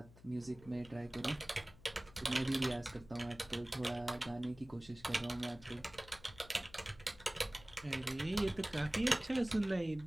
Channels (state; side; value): noise; left; hum, 21 dB below the sound